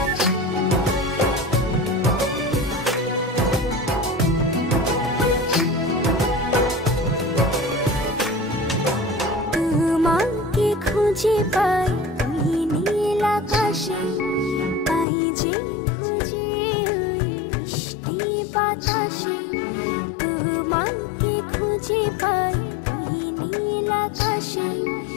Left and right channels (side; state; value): right; drops out; at 15.1 s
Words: তোমাকে খুঁজে পাই ওই নীল আকাশে, পাই যে খুঁজে ওই বৃষ্টি বাতাসে। তোমাকে খুঁজে পাই ওই নীল আকাশে,